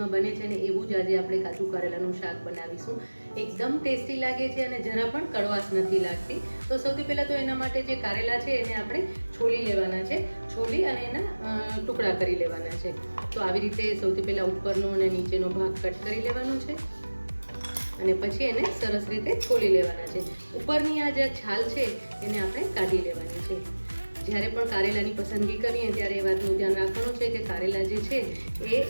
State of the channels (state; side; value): inverted; both; correlation -1.00